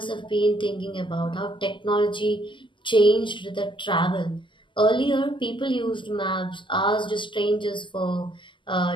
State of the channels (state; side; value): late; right; 0.24 ms